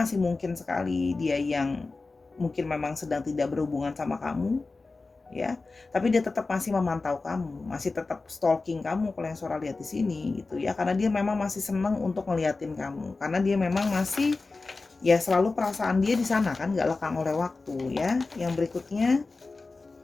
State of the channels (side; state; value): right; quieter; 3.7 dB